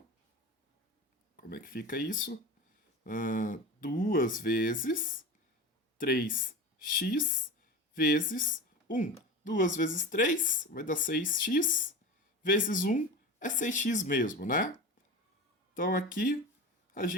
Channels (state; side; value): normal; both; correlation 0.29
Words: Como é que fica isso? 2 vezes 3x vezes 1. 2 vezes 3 vai dar 6x, vezes 1 é 6x mesmo, né? Então aqui a